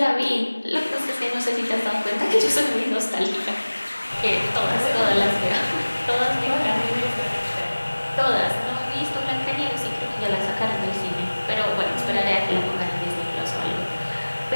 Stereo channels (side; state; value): both; inverted; correlation -1.00